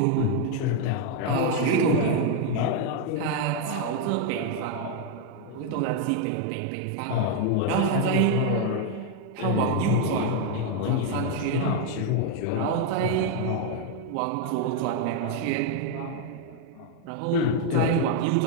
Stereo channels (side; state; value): both; different; correlation 0.01